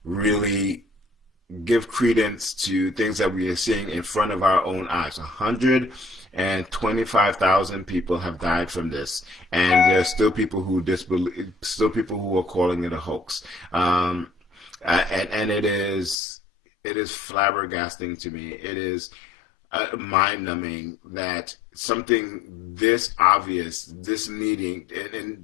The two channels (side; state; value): right; drops out; at 16.2 s